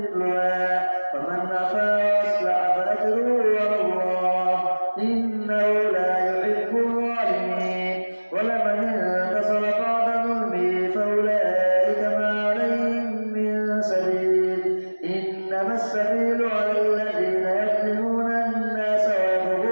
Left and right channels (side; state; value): both; inverted; correlation -1.00